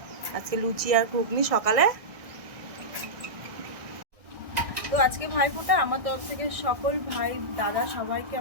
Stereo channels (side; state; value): left; late; 1.7 ms